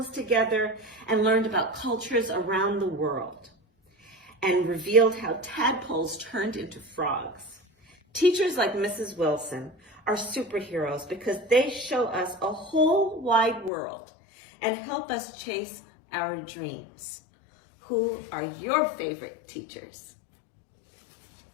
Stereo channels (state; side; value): drops out; right; at 13.7 s